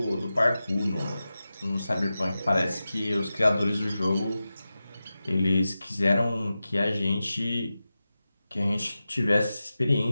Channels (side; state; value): both; inverted; correlation -0.94